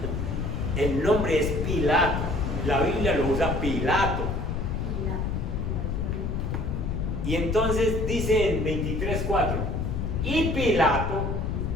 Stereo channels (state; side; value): noise; left; rumble, 1 dB below the sound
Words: El nombre es Pilato, la Biblia lo usa Pilato. Y entonces dice en 23:4, y Pilato